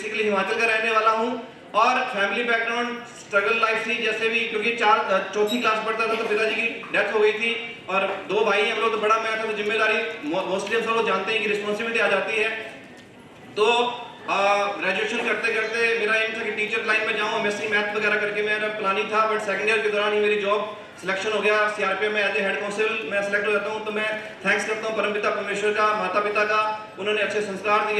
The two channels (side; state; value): both; identical; correlation 1.00